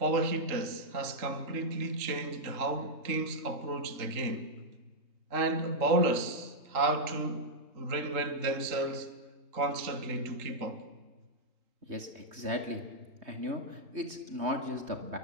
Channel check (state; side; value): late; left; 3.2 ms